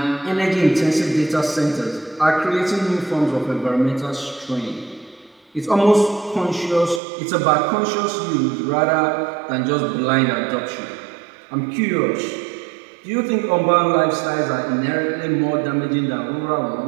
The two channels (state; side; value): drops out; left; at 7.0 s